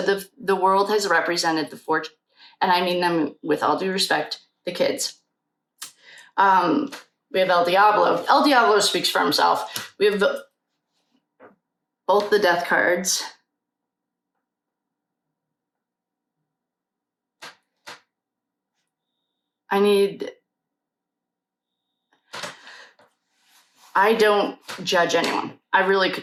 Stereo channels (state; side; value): identical; both; correlation 1.00